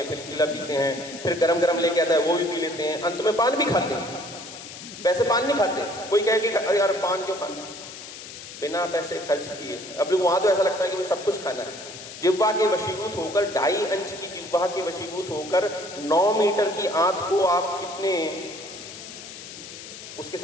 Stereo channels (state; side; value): noise; left; hiss, 13 dB below the sound